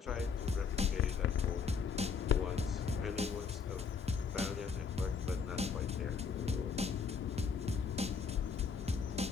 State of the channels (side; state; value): right; quieter; 5.8 dB